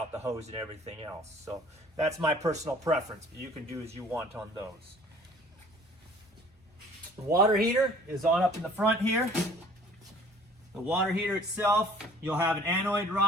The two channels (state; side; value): normal; both; correlation 0.52